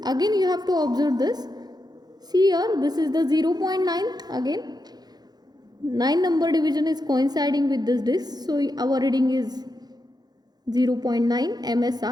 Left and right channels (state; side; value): late; left; 0.19 ms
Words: Again you have to observe this. See here, this is the 0.9 again. 9 number division is coinciding with this disc. So our reading is 0.9